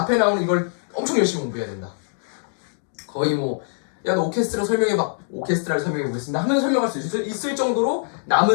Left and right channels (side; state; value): right; silent; digital silence